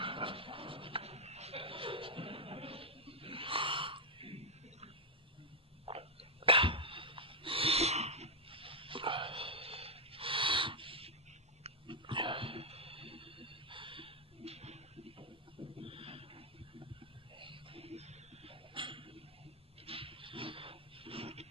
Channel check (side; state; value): both; normal; correlation -0.01